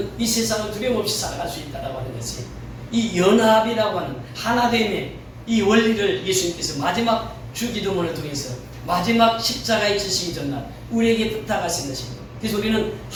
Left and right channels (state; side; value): identical; both; correlation 1.00